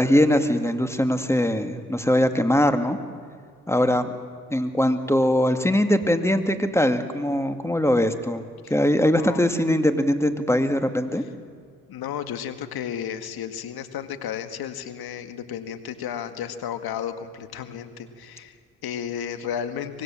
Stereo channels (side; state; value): both; normal; correlation 0.81